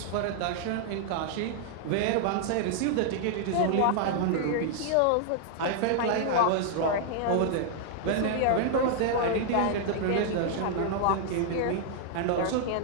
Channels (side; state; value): both; different; correlation -0.01